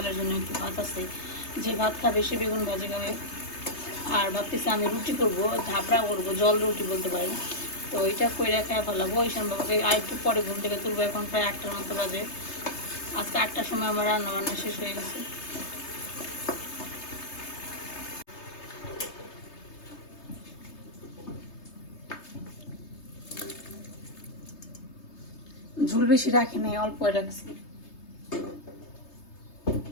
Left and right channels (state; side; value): late; right; 3.3 ms